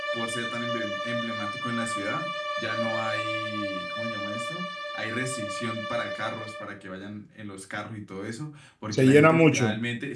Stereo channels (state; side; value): identical; both; correlation 1.00